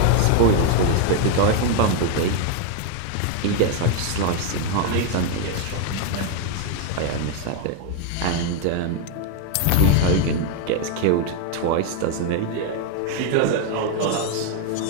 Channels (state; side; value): different; both; correlation 0.01